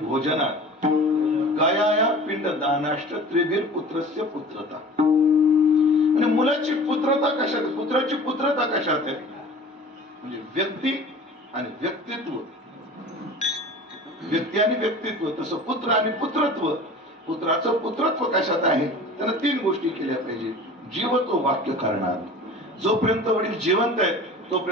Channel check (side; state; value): both; normal; correlation 0.41